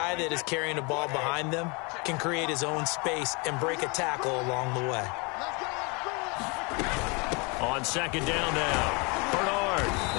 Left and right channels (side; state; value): right; quieter; 30.3 dB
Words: that is carrying the ball behind them can create his own space and break a tackle along the way. On 2nd down now, Bernard.